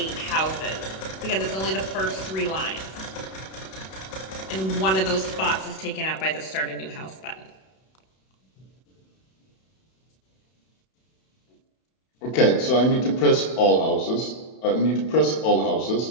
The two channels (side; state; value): right; late; 32 ms